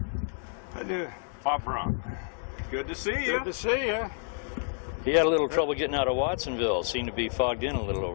I do. Bob Brahm. good to see you. Good to see you. He had a little trouble getting out of Watsonville. Seemed to be fogged in a little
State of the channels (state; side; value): silent; right; digital silence